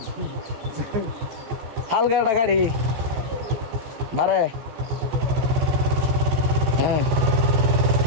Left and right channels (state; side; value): late; left; 14 ms